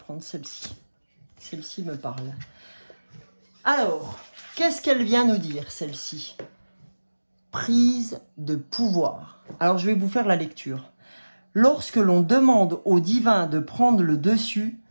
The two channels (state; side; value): inverted; both; correlation -1.00